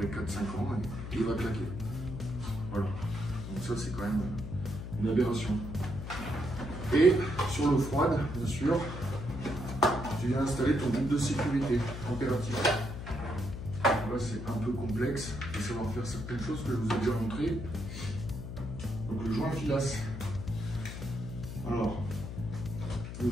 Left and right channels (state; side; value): noise; left; hum, 8 dB below the sound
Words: 4-5 ans et il va claquer. Voilà. Donc ça, c'est quand même une aberration. Et sur l'eau froide, bien sûr, tu viens installer ton groupe de sécurité température. Là, c'est un peu complexe de savoir faire certaines choses que je vous ai déjà montré. Donc le joint filasse. Alors, le